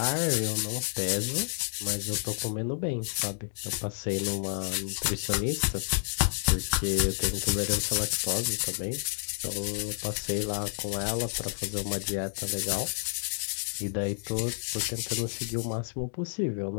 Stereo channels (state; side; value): silent; right; digital silence